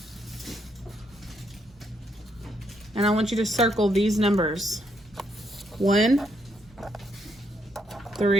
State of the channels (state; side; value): normal; both; correlation 0.75